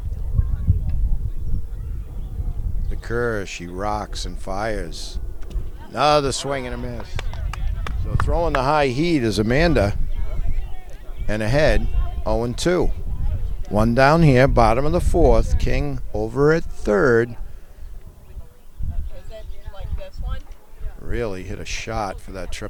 The curve, she rocks and fires. Another swing and a miss. So throwing the high heat is Amanda. And ahead 0-2. One down here, bottom of the fourth. King over at third. Really hit a shot for that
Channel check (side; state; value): both; identical; correlation 1.00